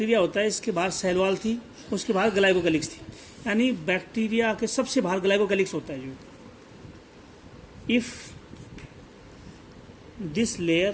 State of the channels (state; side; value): identical; both; correlation 1.00